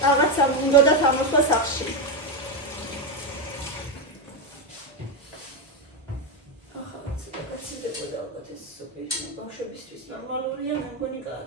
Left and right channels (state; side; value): normal; both; correlation 0.09